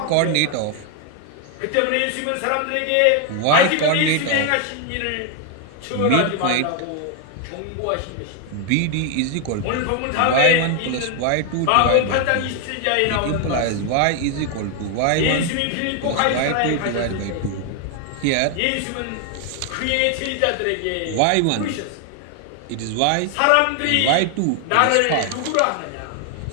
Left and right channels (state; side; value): different; both; correlation 0.00